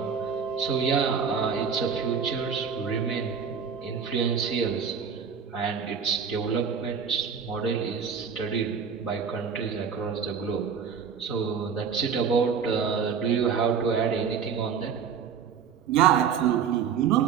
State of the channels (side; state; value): left; quieter; 6.8 dB